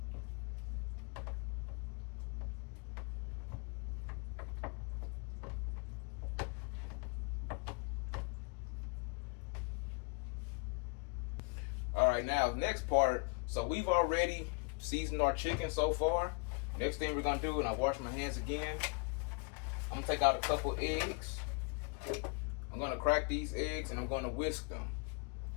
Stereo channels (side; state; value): right; quieter; 32.3 dB